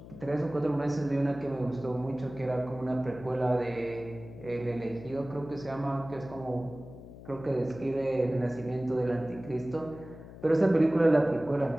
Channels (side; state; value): left; noise; hum, 16 dB below the sound